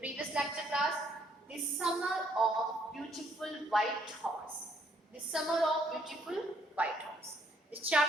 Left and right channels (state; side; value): normal; both; correlation 0.68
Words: lecture class, the summer of beautiful white horse. The summer of beautiful white horse. This